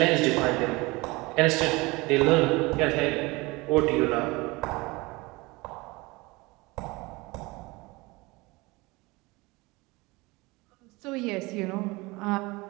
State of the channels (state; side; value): quieter; left; 23.5 dB